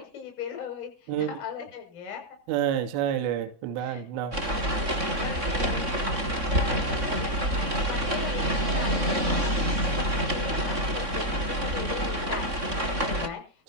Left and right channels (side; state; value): left; late; 3.6 ms